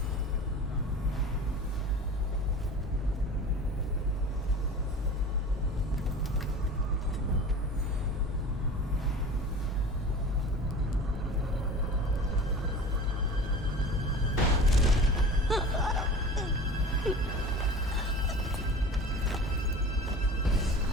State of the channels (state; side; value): normal; both; correlation 0.38